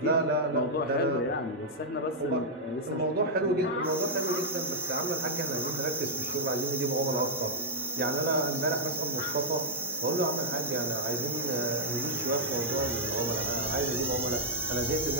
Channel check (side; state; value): both; normal; correlation -0.07